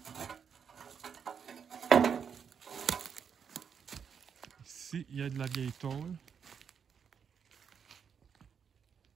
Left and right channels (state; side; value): quieter; left; 7.0 dB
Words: Ici, il y a de la vieille tôle.